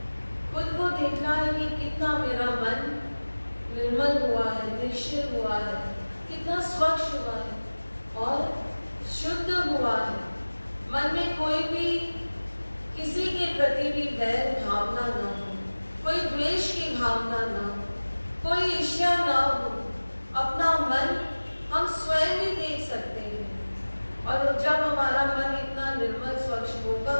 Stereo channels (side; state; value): both; inverted; correlation -1.00